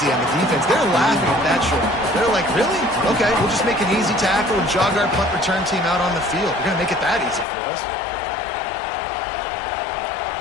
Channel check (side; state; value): right; drops out; at 7.5 s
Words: on the defense. They're laughing at that short. They're like, really? Okay, we'll just make an easy tackle and jog our punt return team out on the field. We're going to make it that easy for us.